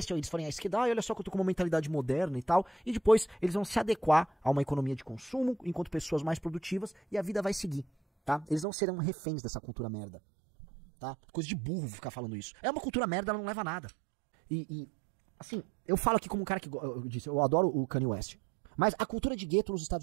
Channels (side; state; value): left; drops out; at 8.7 s